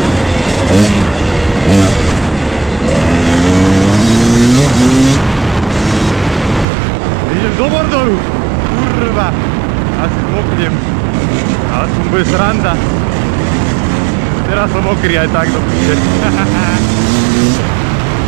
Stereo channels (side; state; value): left; drops out; at 6.7 s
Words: Idem do Mordoru. Kurva. Asi zmoknem. Ale to bude sranda. Teraz som mokrý aj tak do piče.